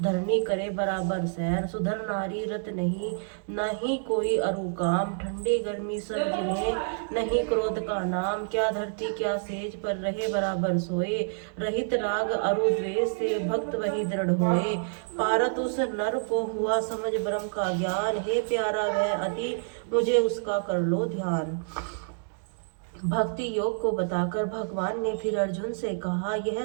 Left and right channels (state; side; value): silent; left; digital silence